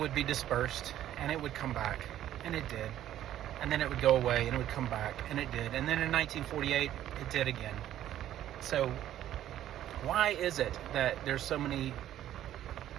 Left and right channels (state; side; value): quieter; left; 12.2 dB